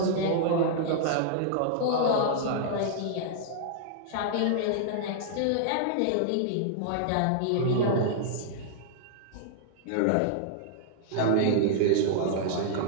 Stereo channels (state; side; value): different; both; correlation -0.01